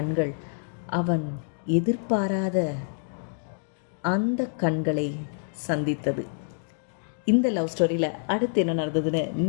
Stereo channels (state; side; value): silent; right; digital silence